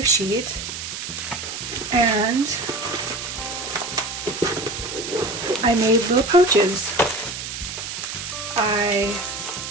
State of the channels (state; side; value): noise; right; hiss, 7 dB below the sound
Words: sheet and I made little pouches.